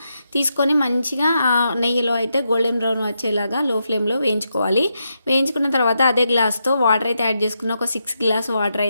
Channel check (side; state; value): both; inverted; correlation -0.84